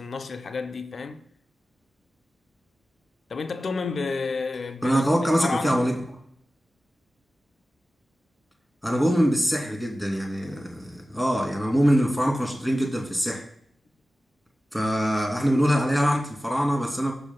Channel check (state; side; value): normal; both; correlation 0.95